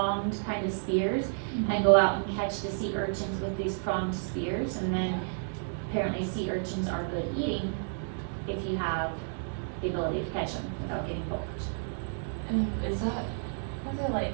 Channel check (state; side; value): silent; left; digital silence